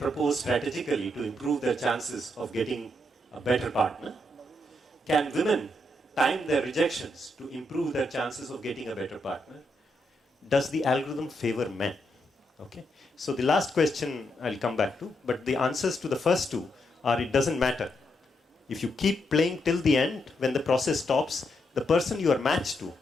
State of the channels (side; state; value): both; normal; correlation 0.80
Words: strategically to improve their chances of getting a better partner? Can women time their rejections to improve their chances of getting a better partner? Does the algorithm favor men? Okay. So the last question I'll come back to, but the answers to the first two are, it doesn't matter. If you keep playing till the end, when the process stops, the person you are matched to